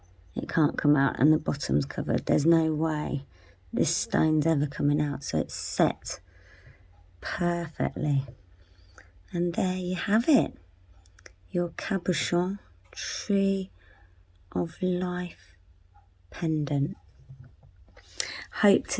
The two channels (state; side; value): identical; both; correlation 1.00